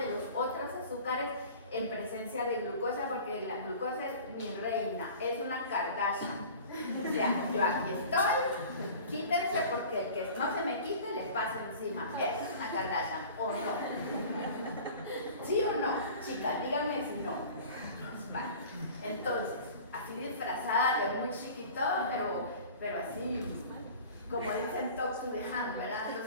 los otros azúcares en presencia de glucosa, porque la glucosa es mi reina, es una Kardashian. O sea, yo aquí estoy, quítense porque el que no se me quite le pasa encima. Esa es una Kardashian, ¿o no? ¿Sí o no? Chicas, díganme si no. Vale. Entonces, así disfrazada de muy chiquito, pero así, como dicen talk to the hand, ¿verdad?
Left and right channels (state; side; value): inverted; both; correlation -0.42